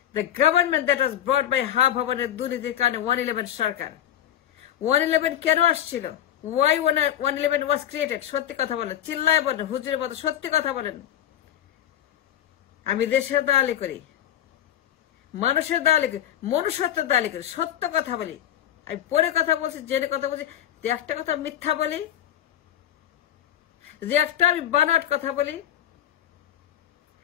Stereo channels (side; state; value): right; quieter; 11.2 dB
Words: The government that was brought by হা ভবনের দুর্নীতির কারণে 111 সরকার। 111 কেন আসছিল? Why 111 was created? সত্যি কথা বলেন, চিল্লায় বলেন, হুজুরের মতো সত্যি কথা বলেন। আমি দেশের দালালি করি, মানুষের দালালি করি, মনুষ্যত্বের দালালি করি, সত্য কথা বলি। আমি পরে কথা বলছি, জেনে কথা বলছি, যে একটা কথা মিথ্যা বলি, যে একটা আমি বানোয়াট কথা বলি,